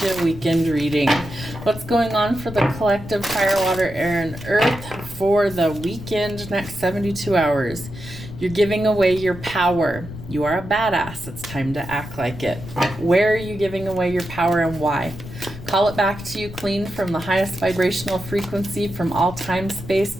you a weekend reading. What's going on for the collective fire, water, air, and earth for the weekend, next 72 hours? You're giving away your power. You are a badass. It's time to act like it. Where are you giving away your power and why? Call it back to you clean from the highest vibrational frequency from all time, space,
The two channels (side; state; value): left; noise; rumble, 12 dB below the sound